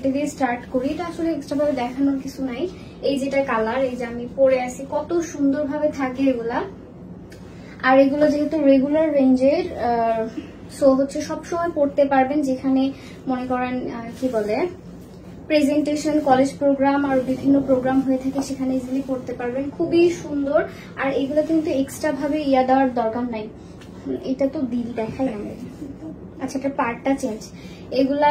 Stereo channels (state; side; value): identical; both; correlation 1.00